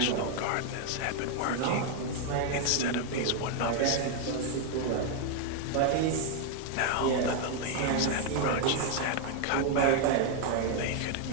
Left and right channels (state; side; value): different; both; correlation 0.01